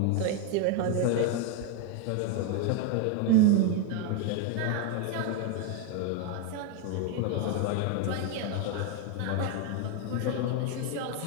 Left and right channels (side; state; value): both; different; correlation 0.01